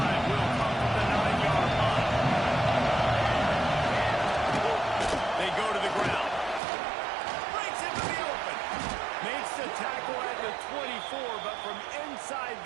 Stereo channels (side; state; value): left; drops out; at 6.6 s